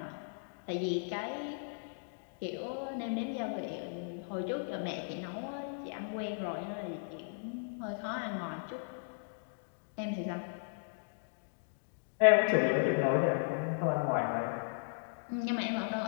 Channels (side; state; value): right; silent; digital silence